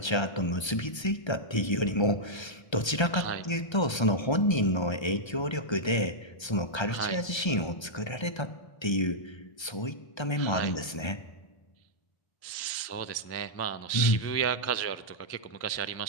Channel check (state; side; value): late; right; 1.3 ms